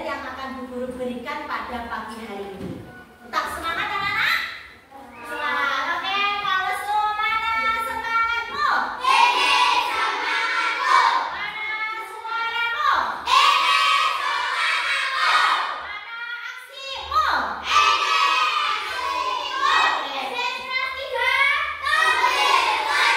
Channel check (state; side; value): identical; both; correlation 1.00